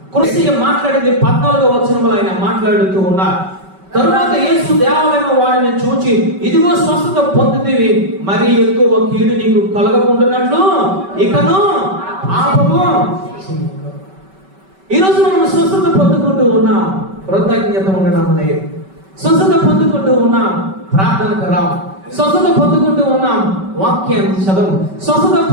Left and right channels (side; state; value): left; late; 5.2 ms